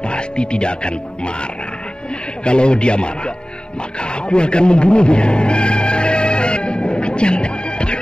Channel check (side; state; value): right; late; 0.049 ms